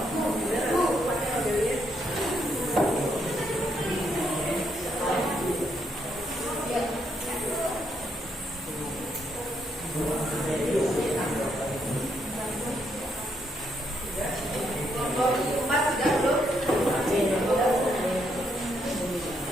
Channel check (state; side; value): normal; both; correlation 0.76